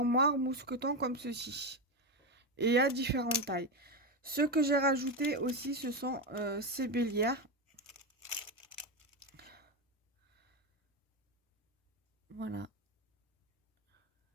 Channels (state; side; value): normal; both; correlation 0.12